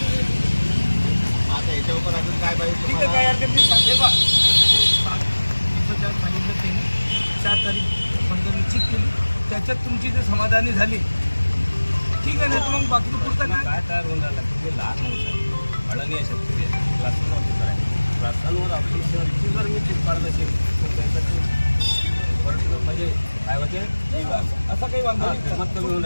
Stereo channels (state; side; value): inverted; both; correlation -1.00